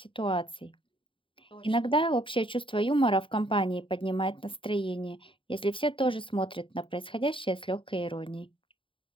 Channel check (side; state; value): right; late; 0.25 ms